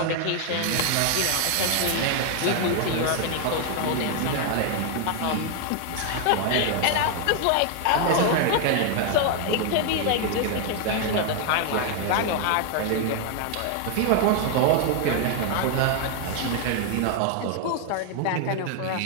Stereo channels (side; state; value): both; different; correlation 0.00